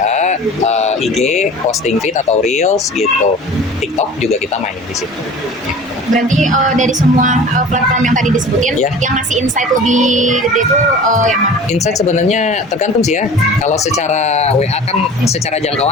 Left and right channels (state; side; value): normal; both; correlation 0.40